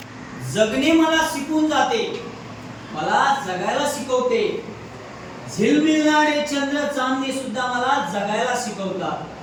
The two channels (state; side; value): identical; both; correlation 1.00